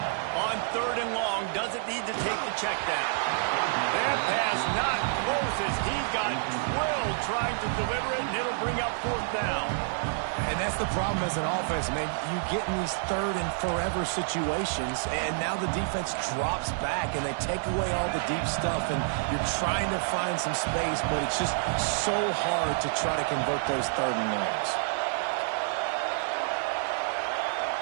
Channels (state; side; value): silent; left; digital silence